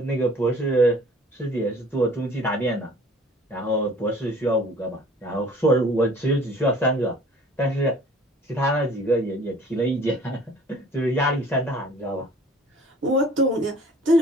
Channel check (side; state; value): both; normal; correlation 0.51